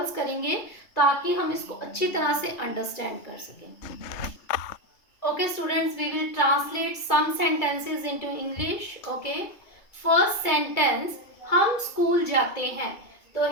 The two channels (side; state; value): right; late; 2.2 ms